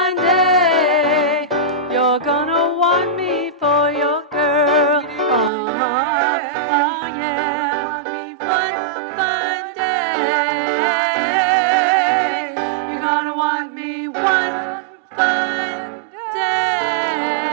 day, you're gonna want me for your girl. Oh yeah. One fine day, you're gonna want me one fine day.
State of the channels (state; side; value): drops out; left; at 5.5 s